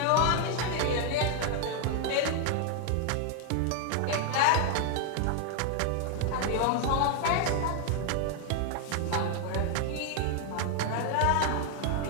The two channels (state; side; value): different; both; correlation 0.00